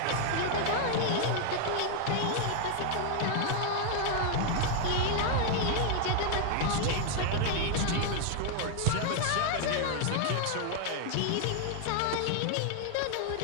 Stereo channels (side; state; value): both; different; correlation 0.00